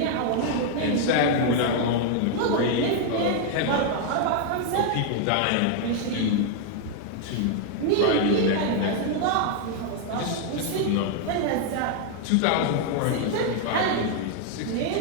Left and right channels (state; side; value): different; both; correlation 0.00